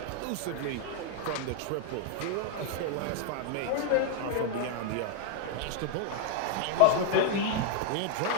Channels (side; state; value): both; different; correlation 0.01